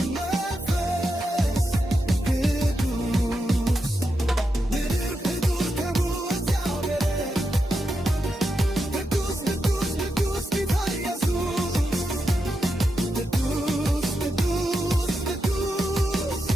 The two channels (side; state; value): both; normal; correlation 0.87